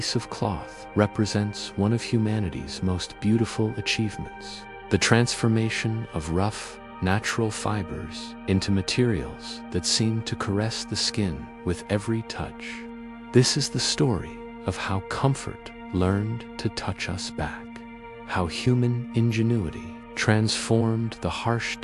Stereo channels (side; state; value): both; identical; correlation 1.00